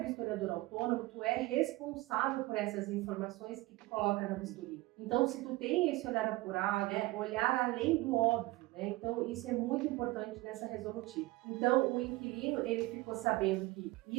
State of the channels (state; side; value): quieter; left; 20.2 dB